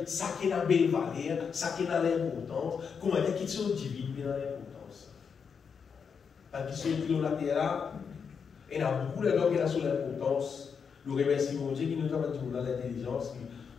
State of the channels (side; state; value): right; quieter; 6.3 dB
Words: ça qui est dans la belle valeur, ça qui est dans l'importance, comment dire, qui sont divines dans l'importance. Parce qu'ils sont l'eau la terre là, et il y a beaucoup de gens qui sont sur l'importance. Nous remercions mon Dieu qui nous a dit dans l'intelligence.